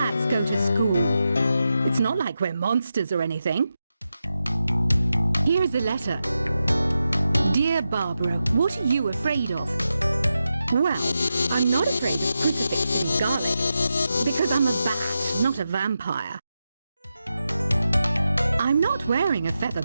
go to school. It's not like we're monsters or anything. Here's a letter. Dear Barbara, what are you afraid of? Well, I'm not afraid of crucifix and garlic, because I'm a bat, not a vampire. I'm not wearing a feather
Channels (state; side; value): inverted; both; correlation -0.89